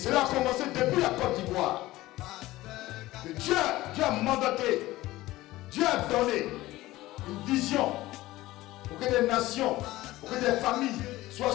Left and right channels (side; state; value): right; quieter; 17.4 dB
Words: a commencé depuis la Côte d'Ivoire. Dieu a mandaté, Dieu a donné une vision pour que des nations, pour que des familles